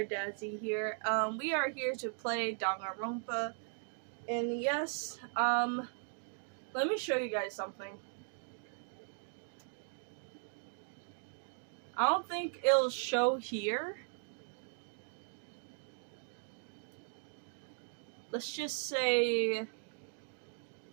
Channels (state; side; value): silent; left; 52 dB below the other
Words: here. We are here to play Danganronpa, and yes, let me show you guys something. I don't think it'll show here. Let's just say